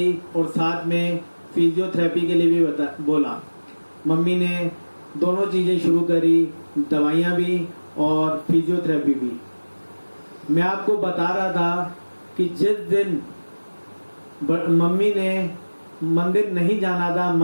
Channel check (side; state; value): both; inverted; correlation -1.00